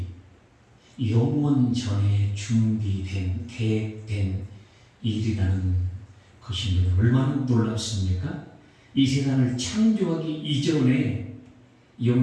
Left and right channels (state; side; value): identical; both; correlation 1.00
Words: 영원 전에 준비된 계획된 일이라는 것입니다. 얼마나 놀랍습니까? 이 세상을 창조하기 이전에